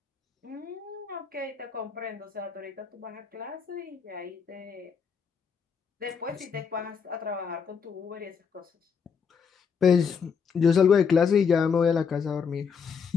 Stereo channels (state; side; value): quieter; right; 6.3 dB